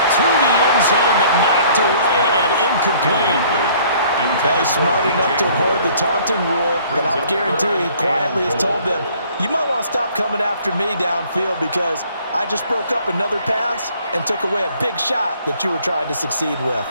To the end zone, but knocked away and incomplete. Well, he's smart enough to avoid the taunting rule, but I'll guarantee he quietly has told them, you might want to stop coming after me downfield because I just broke up another pass and took away a big shot that you were trying to succeed with.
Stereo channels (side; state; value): both; inverted; correlation -0.57